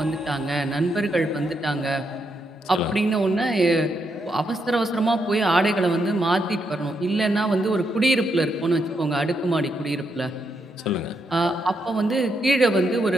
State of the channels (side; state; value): both; normal; correlation 0.80